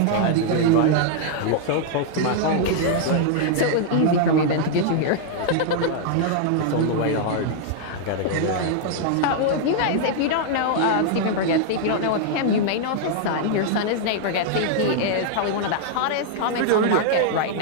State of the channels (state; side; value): different; both; correlation -0.01